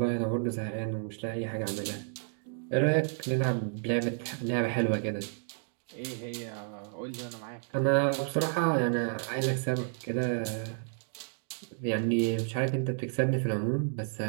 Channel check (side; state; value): left; silent; 57 dB below the other